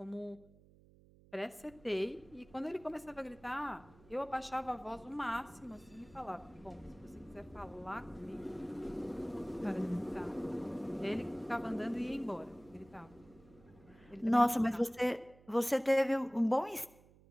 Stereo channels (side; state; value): right; noise; hum, 25 dB below the sound